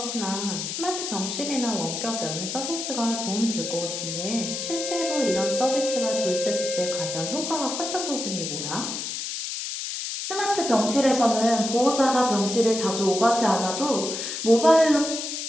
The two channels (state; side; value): noise; left; hiss, 5 dB below the sound